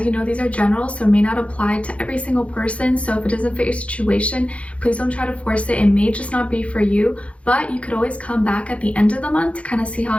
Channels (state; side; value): late; right; 0.063 ms